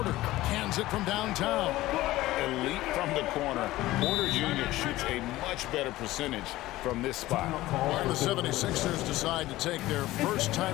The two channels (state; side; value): quieter; right; 16.9 dB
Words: Cans it from downtown. Elite from the corner. Porter Jr. shoots a much better percentage from this spot. While the 76ers decide to take their first